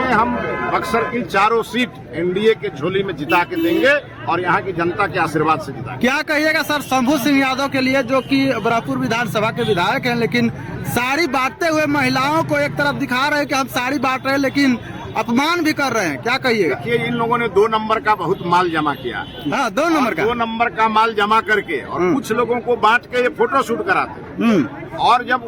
हम बक्सर की 4 सीट एनडीए के झोली में जिता के देंगे, और यहाँ की जनता के आशीर्वाद से जिता। क्या कहिएगा सर शंभू सिंह यादव के लिए, जो कि बरापुर विधानसभा के विधायक हैं, लेकिन साड़ी बांटते हुए महिलाओं को एक तरफ दिखा रहे हैं कि हम साड़ी बांट रहे हैं, लेकिन अपमान भी कर रहे हैं, क्या कहिएगा? देखिए, इन लोगों ने 2 नंबर का बहुत माल जमा किया। हाँ, 2 नंबर का। 2 नंबर का माल जमा करके और कुछ लोगों को बांट के ये फोटो शूट कराते, और जब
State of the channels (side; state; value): both; identical; correlation 1.00